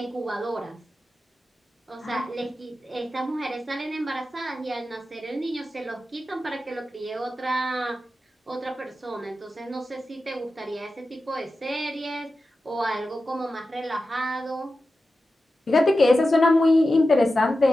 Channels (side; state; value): both; normal; correlation 0.92